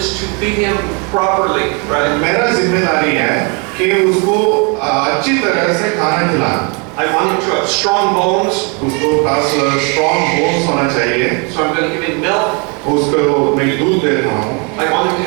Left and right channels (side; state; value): left; quieter; 33.7 dB